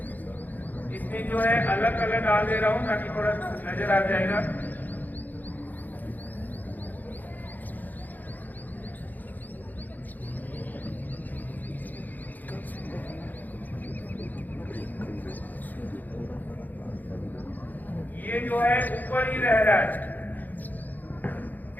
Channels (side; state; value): right; late; 0.084 ms